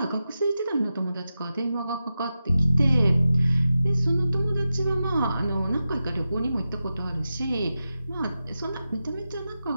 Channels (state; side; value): inverted; both; correlation -0.91